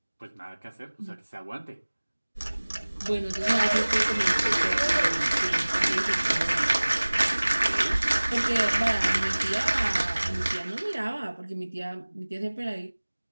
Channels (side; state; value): both; inverted; correlation -1.00